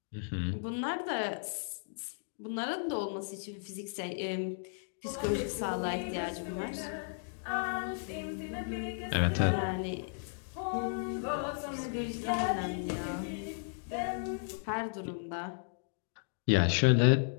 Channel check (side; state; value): right; silent; digital silence